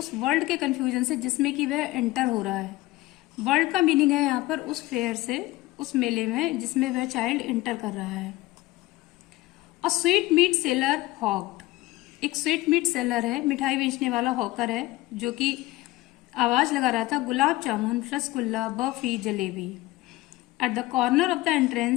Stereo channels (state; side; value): quieter; right; 19.1 dB